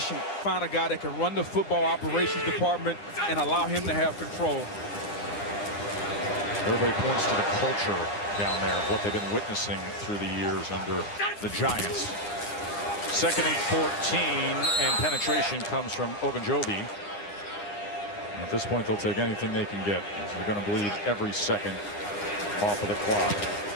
Find a guy that can run the football operations department and allow him to have control. Everybody points to the culture down there of what they've been witnessing through the years under the Giants. 2nd and 14, and penetration comes from Ogunjobi. At this point, they'll take anything they can get. So they're going to bleed every second off of the clock.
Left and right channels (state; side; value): late; right; 9.8 ms